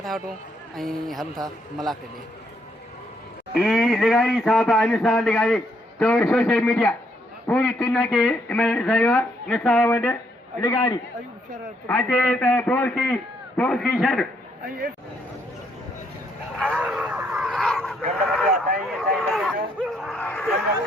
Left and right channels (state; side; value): normal; both; correlation 0.72